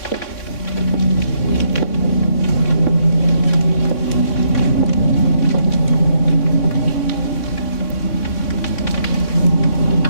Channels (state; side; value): late; right; 3.6 ms